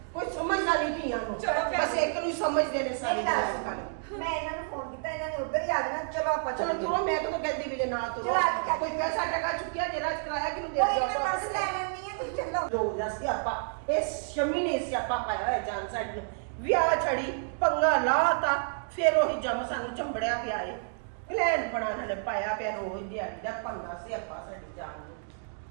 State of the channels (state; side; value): silent; left; digital silence